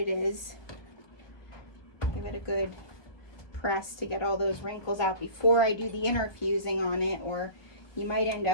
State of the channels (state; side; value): late; right; 1.2 ms